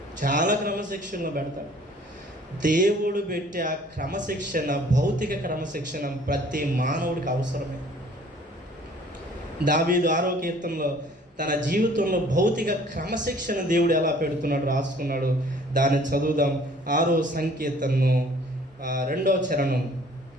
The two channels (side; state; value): both; normal; correlation 0.54